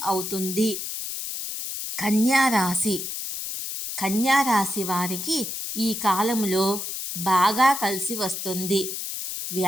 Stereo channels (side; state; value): left; noise; hiss, 5 dB below the sound